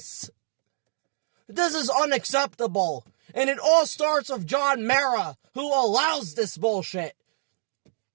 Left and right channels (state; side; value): silent; left; digital silence